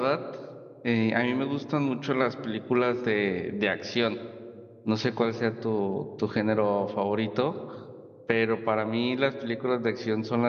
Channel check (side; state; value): both; identical; correlation 1.00